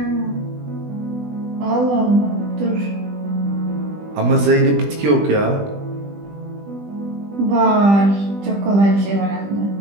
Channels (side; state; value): left; late; 20 ms